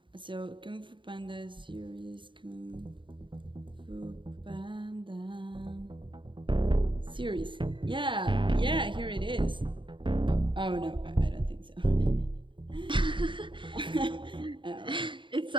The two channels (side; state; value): left; late; 0.24 ms